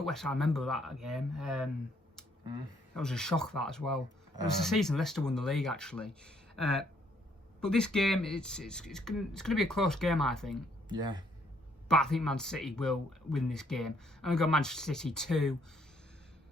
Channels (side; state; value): both; normal; correlation 0.68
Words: West Ham. I remember that game. That was a shock, that as well. It was the season Leicester won the league, actually. But this game, it's going to be a close game, I think. Yeah. But I think Man City will win this game. I'm going to go Manchester City 2,